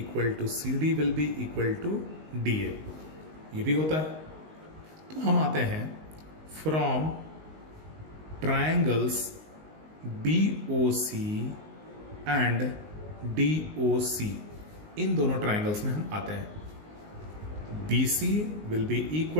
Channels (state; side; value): late; left; 19 ms